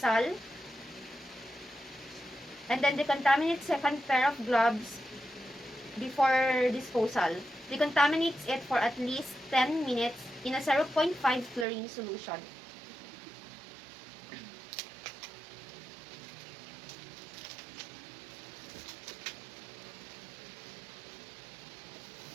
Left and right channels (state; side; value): drops out; left; at 11.7 s